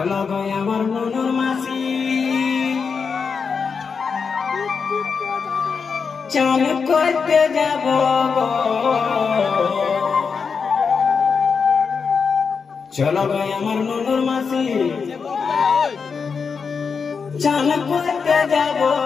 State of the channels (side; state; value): right; quieter; 5.6 dB